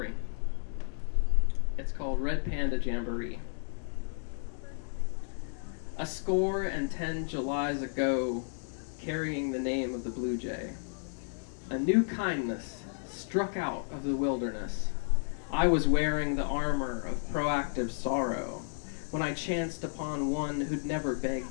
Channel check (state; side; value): silent; right; digital silence